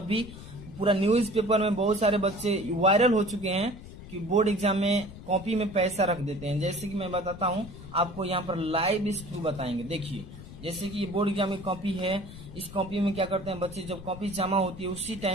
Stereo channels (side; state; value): left; noise; rumble, 14 dB below the sound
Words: पूरा न्यूज़पेपर में बहुत सारे बच्चे वायरल हो चुके हैं कि बोर्ड एग्जाम में कॉपी में पैसा रख देते हैं। जैसे कि मैं बताता हूँ आपको, यहाँ पर लाइव स्क्रू बताएंगे। देखिए, जैसे कि ये बोर्ड एग्जाम की कॉपी है, इस कॉपी में क्या करते हैं बच्चे, जब कॉपी जमा होती है उसी